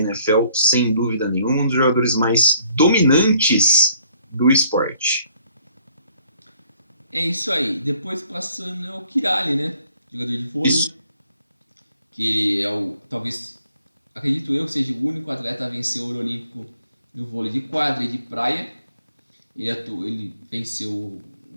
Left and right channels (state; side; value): inverted; both; correlation -0.62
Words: sem dúvida nenhuma. Um dos jogadores mais dominantes do esporte. É isso aí. Depois passando é o Kiraly, né? Jogador de vôlei. Isso. Que é talvez, acredito eu, que seja o único atleta a vencer o ouro olímpico no vôlei de quadra e de praia. Ele venceu